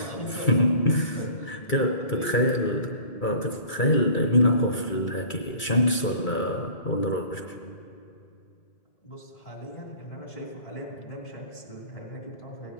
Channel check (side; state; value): right; late; 2.3 ms